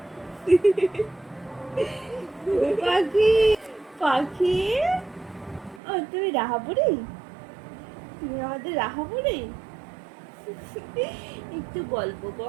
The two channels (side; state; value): left; drops out; at 5.8 s